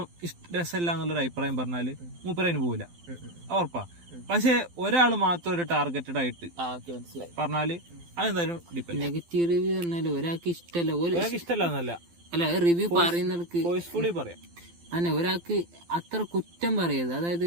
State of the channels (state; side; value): late; left; 12 ms